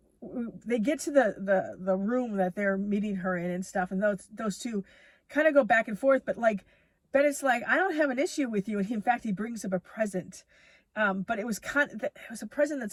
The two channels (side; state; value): both; identical; correlation 1.00